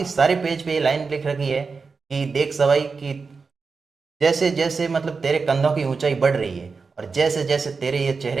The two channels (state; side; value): quieter; left; 4.7 dB